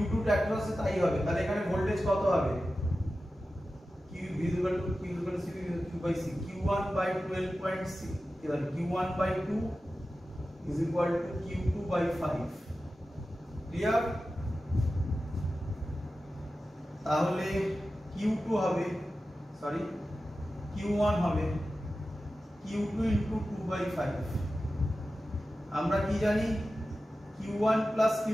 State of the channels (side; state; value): both; normal; correlation 0.94